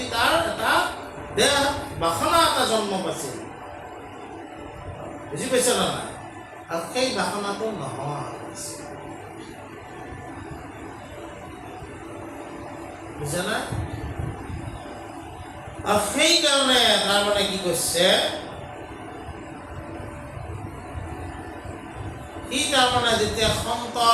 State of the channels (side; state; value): both; identical; correlation 1.00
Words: তাৰ এটা দেহ বাসনা এটা জন্ম পাইছিল। বুজি পাইছে না নাই? আৰু সেই বাসনাটো নোহোৱা হৈছে। বুজা নাই? আৰু সেইকাৰণে তাৰমানে কি কৈছে, সি তাৰমানে যেতিয়া